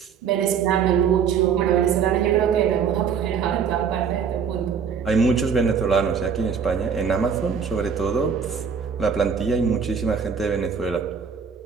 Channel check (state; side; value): quieter; left; 6.6 dB